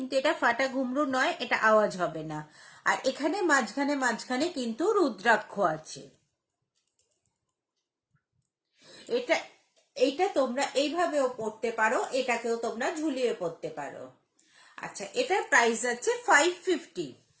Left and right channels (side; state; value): both; identical; correlation 1.00